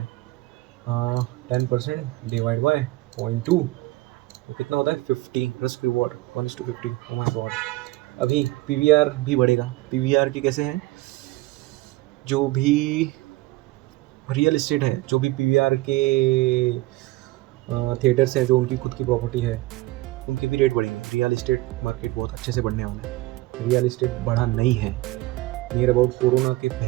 10% डिवाइड बाय 0.2 तो कितना होता है, 50 risk reward 1:50। Oh my God. अभी पीवीआर भी बढ़ेगा। पीवीआर की कैसे हैं, जो भी रियल इस्टेट है, जो भी पीवीआर के थिएटर्स है, जो उनकी खुद की प्रॉपर्टी है, उनके भी रेट बढ़ेंगे। रियल इस्टेट मार्केट बहुत अच्छे से बढ़ने वाला है। रियल इस्टेट बढ़ा नहीं है, नियर अबाउट कोरोना के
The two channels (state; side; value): quieter; left; 19.3 dB